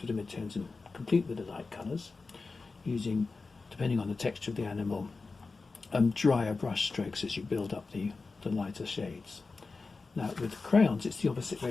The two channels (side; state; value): right; quieter; 4.0 dB